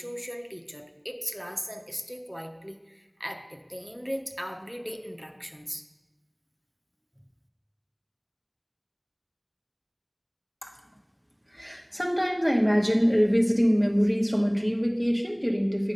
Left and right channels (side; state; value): both; identical; correlation 1.00